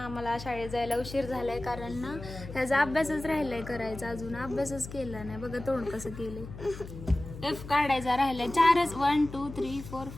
आम्हाला शाळेत जायला उशीर झालाय कारण ना ह्याचा अभ्यासच राहिलाय करायचा. अजून अभ्यासच केला नाही. बघा तोंड कसं केलंय. एफ काढायचा राहिलाय. 4च 1 2 3 4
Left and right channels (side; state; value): left; noise; hum, 12 dB below the sound